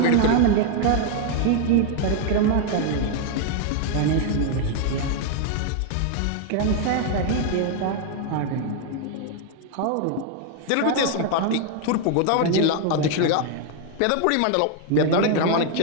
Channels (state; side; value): different; both; correlation 0.00